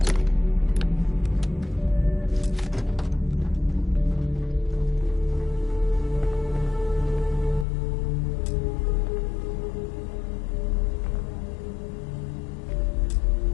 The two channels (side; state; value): right; drops out; at 7.7 s